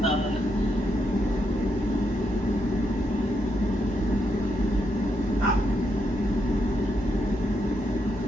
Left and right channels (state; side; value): normal; both; correlation 0.80